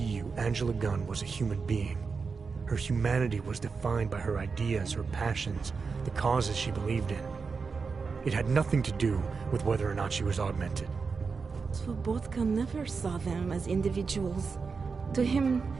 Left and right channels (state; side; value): quieter; left; 5.0 dB